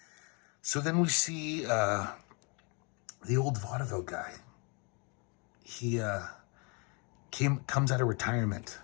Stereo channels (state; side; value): quieter; right; 33.2 dB